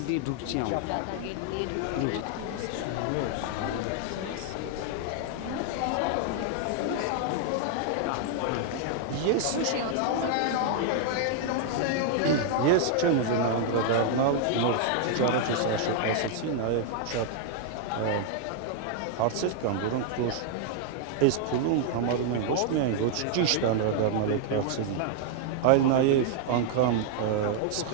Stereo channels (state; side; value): different; both; correlation -0.01